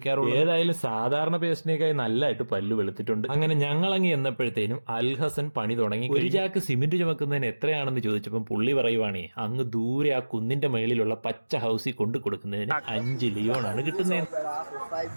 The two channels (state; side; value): inverted; both; correlation -1.00